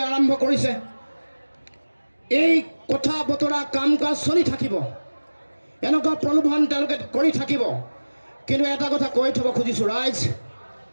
আৰম্ভ কৰিছে। এই কথা বতৰা কাম কাজ চলি থাকিব, এনেকুৱা প্ৰলোভন তেওঁলোকে কৰি থাকিব। কিন্তু এটা কথা কৈ থ'ব খুজিছোঁ ৰাইজ,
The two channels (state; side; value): inverted; both; correlation -1.00